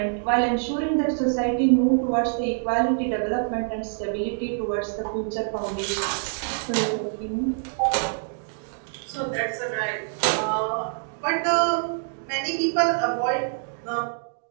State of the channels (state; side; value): silent; left; digital silence